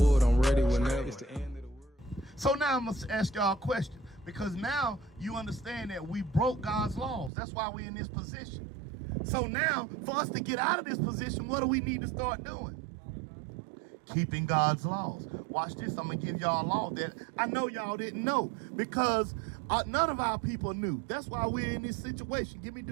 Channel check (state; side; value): drops out; left; at 7.3 s